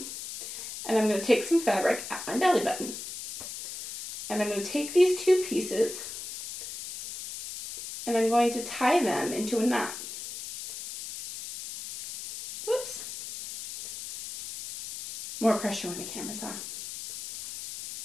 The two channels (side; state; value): left; noise; hiss, 9 dB below the sound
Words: and I'm going to take some fabric at my belly button. And I'm going to take these 2 pieces, and I'm going to tie them into a knot. Whoops. More pressure when the camera's on.